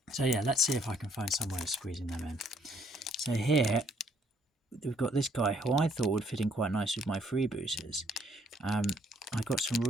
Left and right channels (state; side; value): normal; both; correlation 0.66